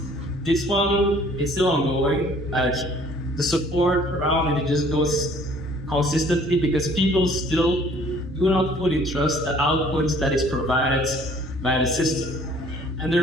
this one is still ongoing. The support around it just goes consistently because people still do not fully trust the outputs that is provided by the system. And the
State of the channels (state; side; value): normal; both; correlation 0.56